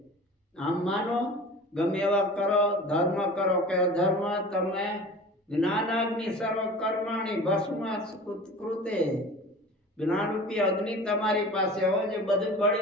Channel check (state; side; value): normal; both; correlation 0.38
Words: આમ માનો ગમે એવા કરો, ધર્મ કરો કે અધર્મ, તમે જ્ઞાનાગ્નિ સર્વ કર્માણી ભસ્મ કૃતે. જ્ઞાનરૂપી અગ્નિ તમારી પાસે હોય જે બધું